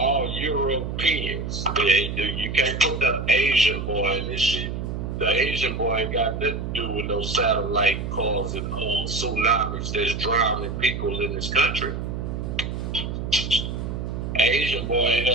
Europeans. You can't put the Asian boy in this shit. The Asian boy ain't got nothing to do with no satellite causing tsunamis that's drowning people in this country. Asian boy ain't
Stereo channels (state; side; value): noise; right; hum, 4 dB below the sound